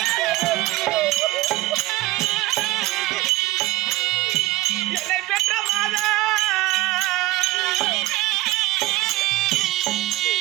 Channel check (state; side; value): quieter; left; 18.5 dB